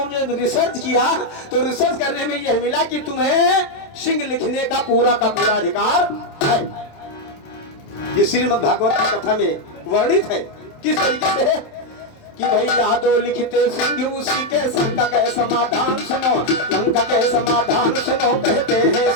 ने रिसर्च किया तो रिसर्च करने में यह मिला कि तुम्हें सिंह लिखने का पूरा अधिकार है। ये श्रीमद् भागवत की कथा में वर्णित है। किस तरीके से कि भाई यादव लिखते सिंह उसी के संकट के समाधान सुनो। लंका के समाधान सुनो। कहते हैं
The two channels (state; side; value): late; right; 27 ms